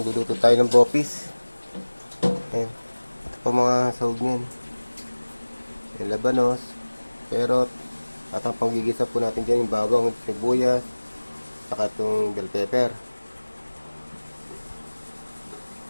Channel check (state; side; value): inverted; both; correlation -1.00